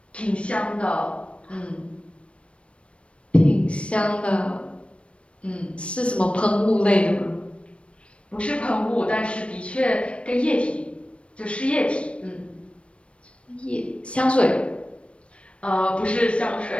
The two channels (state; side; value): late; right; 0.060 ms